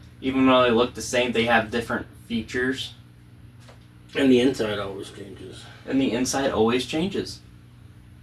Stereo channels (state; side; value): identical; both; correlation 1.00